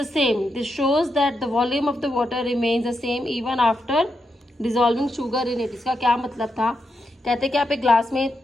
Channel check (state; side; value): normal; both; correlation 0.84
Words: same. This shows that the volume of the water remains the same even after dissolving sugar in it. इसका क्या मतलब था, कहते हैं कि आप एक ग्लास में